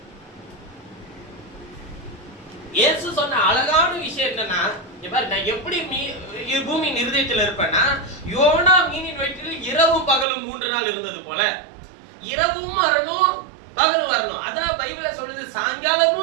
இயேசு சொன்ன அழகான விஷயம் என்னன்னா, நான் எப்படி பூமியின் இருதயத்தில் இருப்பேன்னா, யோனா மீனின் வயிற்றில் இரவும் பகலும் 3 நாள் இருந்தது போல, இரவும் வரணும் பகலும் வரணும். அதான் பைபிள சொல்லுது,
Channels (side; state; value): left; drops out; at 10.2 s